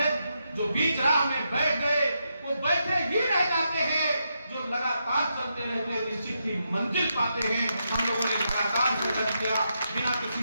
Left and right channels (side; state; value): both; inverted; correlation -0.83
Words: जो बीच राह में बैठ गए वो बैठे ही रह जाते हैं, जो लगातार चलते रहते हैं निश्चित ही मंजिल पाते हैं। हम लोगों ने लगातार संघर्ष किया, बिना किसी